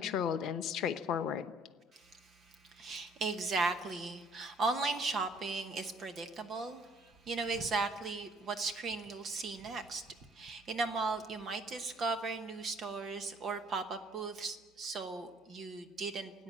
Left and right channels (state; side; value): normal; both; correlation 0.59